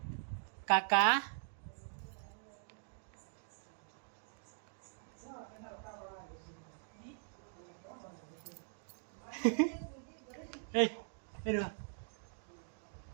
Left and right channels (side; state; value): left; silent; digital silence